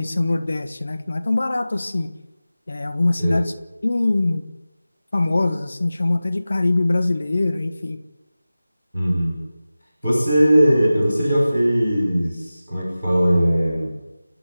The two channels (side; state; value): both; inverted; correlation -0.96